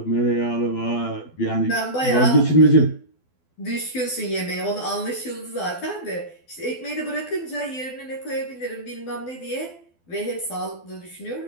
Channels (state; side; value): late; right; 12 ms